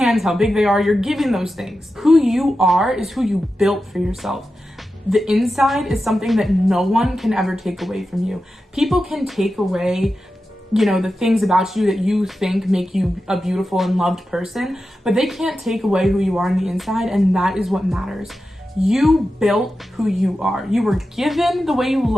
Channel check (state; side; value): normal; both; correlation 0.91